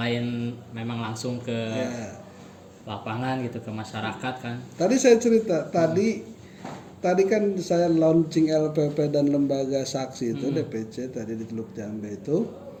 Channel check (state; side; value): identical; both; correlation 1.00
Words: memang langsung ke lapangan gitu, ke masyarakat kan. Tadi saya cerita, tadi kan saya launching LPP dan lembaga saksi itu DPC tadi di Teluk Jambe itu